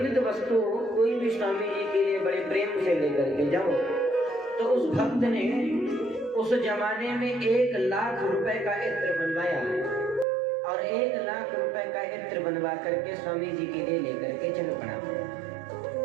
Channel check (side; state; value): left; drops out; at 10.2 s